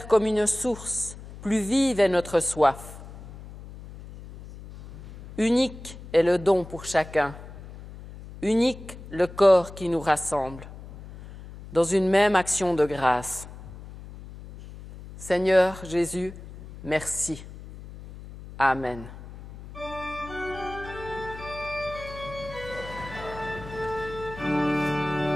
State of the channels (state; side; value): noise; left; hum, 15 dB below the sound